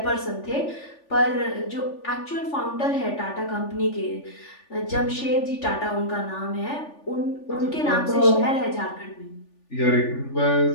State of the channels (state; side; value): late; right; 3.4 ms